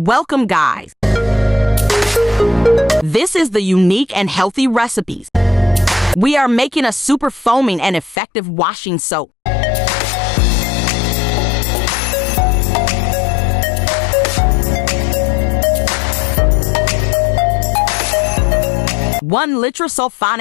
guys. This is the unique and healthy recipes. We are making a super foaming and effective washing soap. One Litre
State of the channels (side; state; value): right; drops out; at 8.2 s